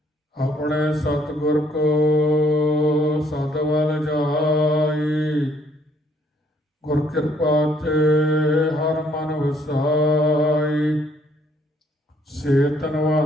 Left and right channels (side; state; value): both; normal; correlation 0.66